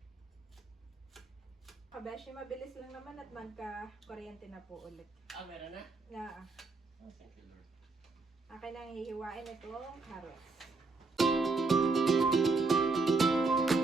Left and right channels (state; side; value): quieter; left; 3.9 dB